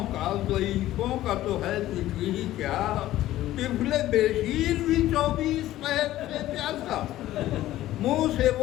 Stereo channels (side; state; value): right; quieter; 14.6 dB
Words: کا ضعیفوں کا تو ہے ذکر ہی کیا طفل بشیر بھی 24 پیر سے پیاسا منہ سے